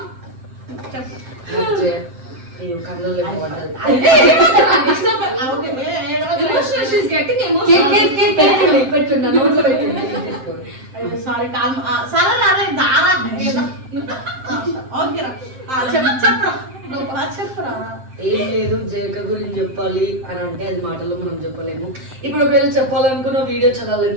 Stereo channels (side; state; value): left; late; 7.6 ms